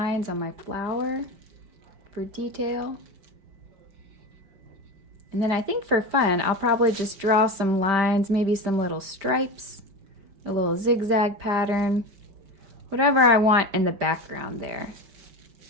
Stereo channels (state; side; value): late; left; 5.1 ms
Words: on my flower for detail. And then I think for fun, I'll probably just draw some lines, maybe some little stripes, a little zigzag pattern, whatever I want in the background there.